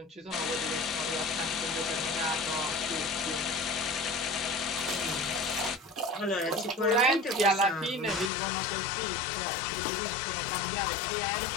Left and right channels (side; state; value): right; drops out; at 8.3 s